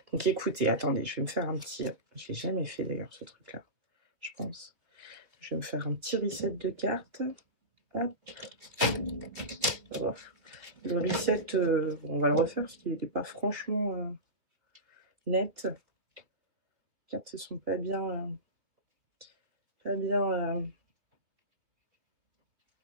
Donc écoutez, attendez, je vais me faire un petit... Je l'ai jamais fait d'ailleurs ce truc-là, je pense. Je vais me faire un petit reset de cartes. Hop. Oh. Le reset, on va le refaire parce qu'il n'était pas franchement net. Les cartes ne sont pas bien... pas bien...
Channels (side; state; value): left; late; 2.7 ms